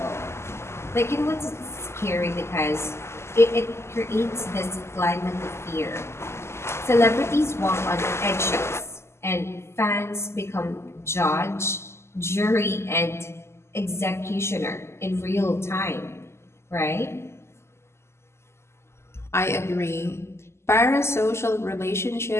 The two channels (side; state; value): right; late; 0.13 ms